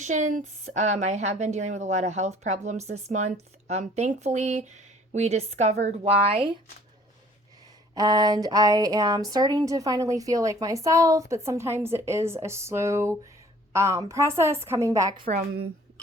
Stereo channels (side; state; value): both; normal; correlation 0.55